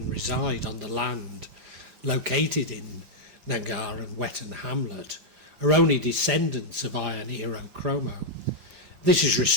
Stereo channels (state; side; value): late; left; 5.0 ms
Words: reside on the land located in Nangar and Wetton Hamlet are only descendants of Iron Hero Kromo. This is